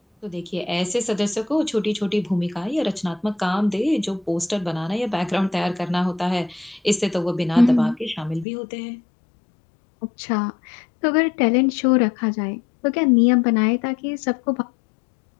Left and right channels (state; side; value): drops out; right; at 8.5 s